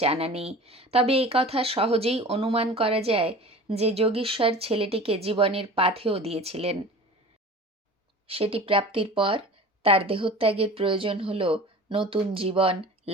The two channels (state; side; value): normal; both; correlation 0.39